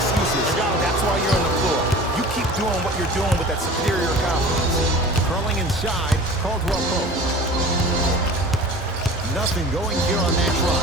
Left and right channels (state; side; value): normal; both; correlation 0.40